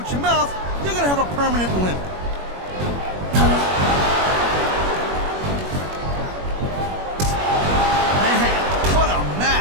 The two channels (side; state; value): left; late; 21 ms